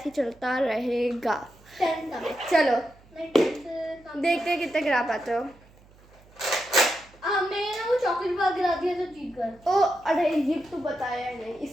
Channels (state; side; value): noise; right; hum, 27 dB below the sound